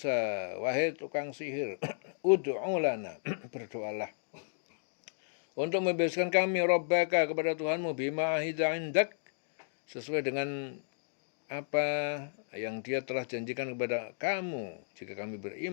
wahai tukang sihir, ud'u lana, berdoalah untuk membebaskan kami, Rabbaka, kepada Tuhanmu, bima ahida indak, sesuai dengan apa yang dia telah janjikan kepada kamu jika kami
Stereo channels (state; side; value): silent; right; digital silence